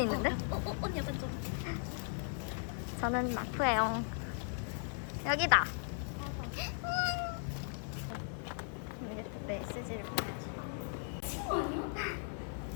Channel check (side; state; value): right; silent; 53 dB below the other